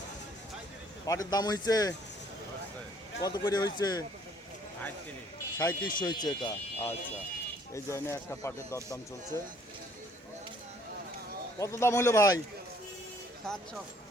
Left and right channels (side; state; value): both; normal; correlation 0.61